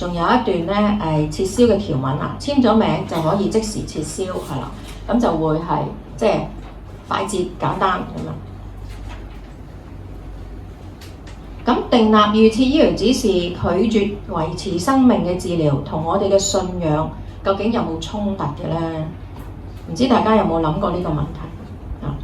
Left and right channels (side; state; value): both; identical; correlation 1.00